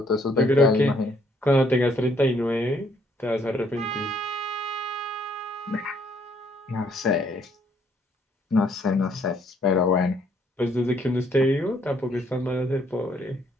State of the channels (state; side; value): normal; both; correlation 0.66